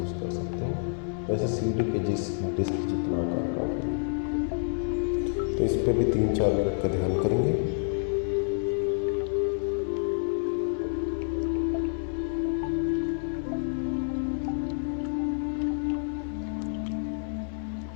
कर सकते हो, वैसे सीढ़ी के डिस्क जितना आकार का है। तो इस पे भी 3-4 मिनट का ध्यान करेंगे।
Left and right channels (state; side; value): silent; right; 57 dB below the other